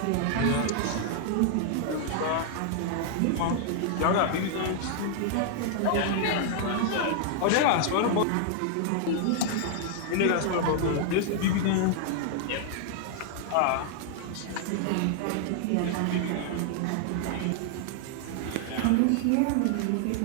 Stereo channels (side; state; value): both; different; correlation 0.00